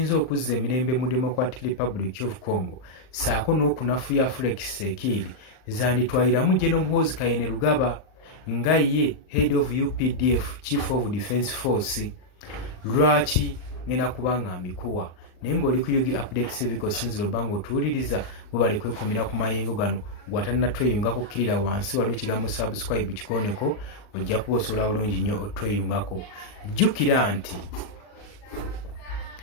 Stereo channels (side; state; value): right; late; 39 ms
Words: okuzza emirembe mu Democratic Republic of Congo saako n'okunafuya Felix Tshisekedi zanditwaliramu General Muhoozi Kainerugaba nga ye head of UPDF, Chief of Defense Force. Lwaki ngenda kubanga mbikuwa naye ng'oli ku Yugi Update TV kosinzira obanga otuwuliriza webale kwekumira ku mayengo gano bw'atannatweyungako kkirira wansi waliwo ekigambo subscribe kikooneko ojja kuba osobola bulungi nnyo otweyungako. Jjukira nti